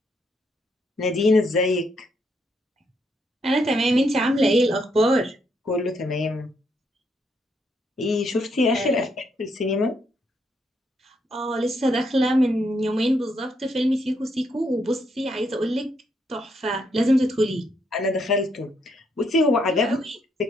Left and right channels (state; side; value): normal; both; correlation 0.76